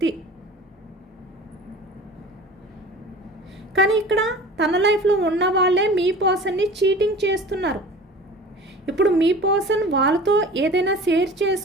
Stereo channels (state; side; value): normal; both; correlation 0.40